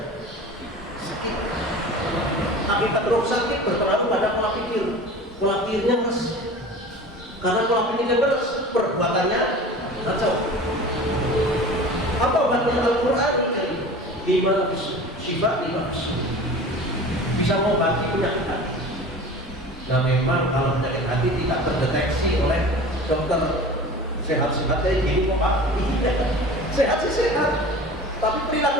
sakit. Akibat ruh sakit berpengaruh pada pola pikirnya keras. Karena pola pikirnya keras, perbuatannya kacau. Apa obatnya Al-Quran? 5 sifat 5 bisa mengobati penyakit hati. Nah memang kalau penyakit hati tidak terdeteksi oleh dokter sehat-sehat kayak gini kok Pak, sehat sih sehat, tapi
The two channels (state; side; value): normal; both; correlation 0.38